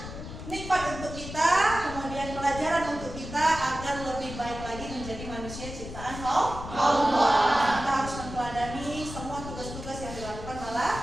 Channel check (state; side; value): noise; left; rumble, 10 dB below the sound